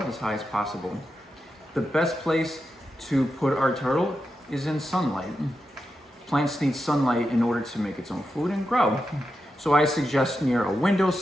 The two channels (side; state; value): both; normal; correlation 0.88